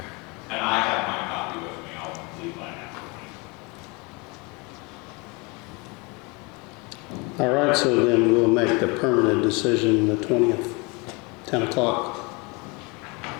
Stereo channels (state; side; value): quieter; right; 28.3 dB